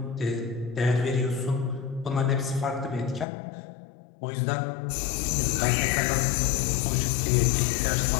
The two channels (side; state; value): right; drops out; at 3.2 s